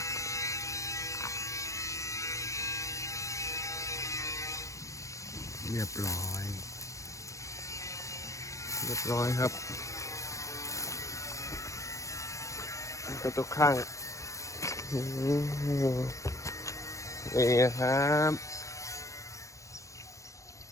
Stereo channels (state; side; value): late; right; 0.15 ms